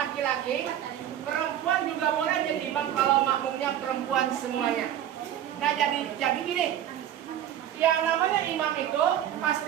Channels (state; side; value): quieter; left; 11.0 dB